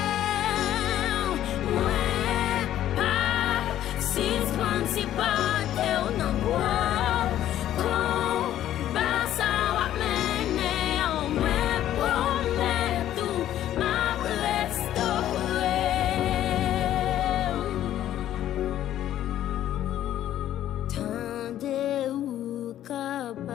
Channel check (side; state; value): right; quieter; 12.1 dB